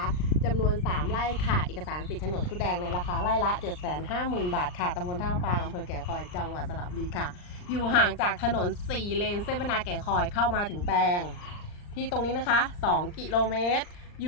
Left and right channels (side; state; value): right; late; 39 ms